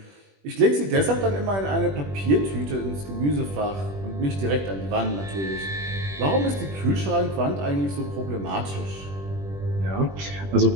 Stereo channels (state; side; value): late; left; 21 ms